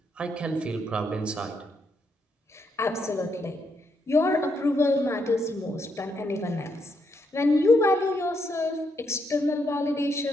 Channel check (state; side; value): normal; both; correlation 0.77